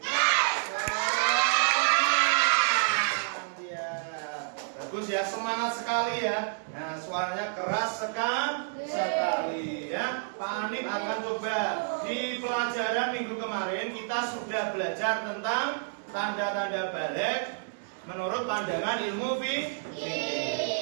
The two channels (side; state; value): left; silent; digital silence